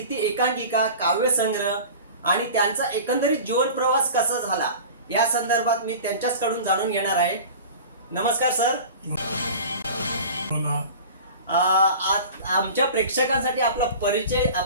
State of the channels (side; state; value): both; inverted; correlation -0.37